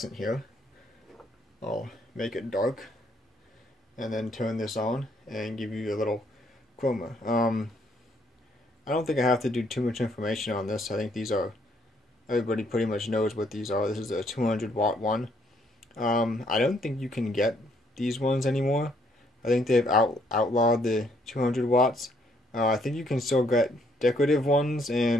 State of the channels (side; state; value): both; normal; correlation 0.68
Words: here. I'll make it dark and then turn this on and give you a little chroma. I don't think I have to do too much information on this. I think these are, everybody pretty much knows what these are. This is a 200 watt one. I don't think you can get these ones anymore. I think they've outlawed the 200 watts. I think you can still get decorative ones